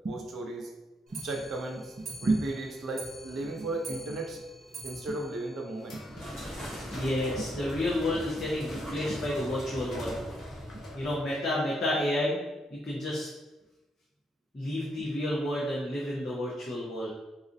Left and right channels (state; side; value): normal; both; correlation 0.76